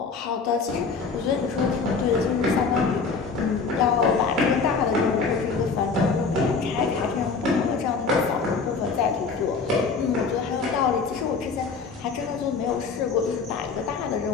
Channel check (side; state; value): right; quieter; 4.8 dB